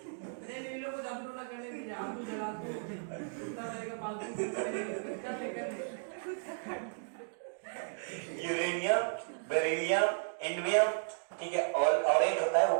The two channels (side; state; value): left; silent; digital silence